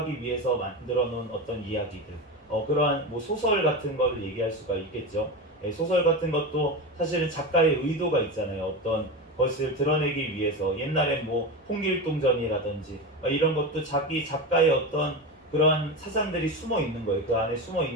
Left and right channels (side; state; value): both; normal; correlation 0.21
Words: 위해서 만들어 놓은 어떤 이야기들 그러한 뭐 소설 같은 거를 얘기할 수가 있겠죠. 소설 같은 것도 사실은 작가의 의도가 있잖아요. 어떤 것을 드러내기 위해서 옛날에 뭐 홍길동전이라든지 이런 것도 자기 작가의 어떤 그러한 사상들이 숨어 있는 거예요. 그 안에 숨어